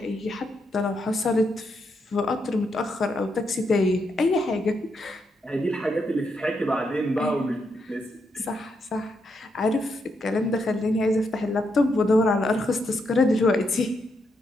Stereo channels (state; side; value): normal; both; correlation 0.80